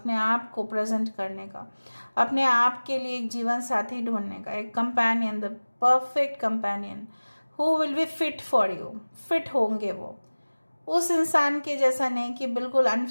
आप को प्रेजेंट करने का, अपने आप के लिए एक जीवन साथी ढूंढने का, एक companion, the perfect companion who will be fit for you. Fit होंगे वो, उस इंसान के जैसा नहीं कि बिल्कुल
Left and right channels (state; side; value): inverted; both; correlation -1.00